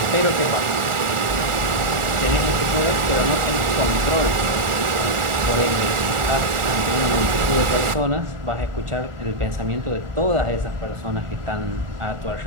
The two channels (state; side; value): late; left; 1.4 ms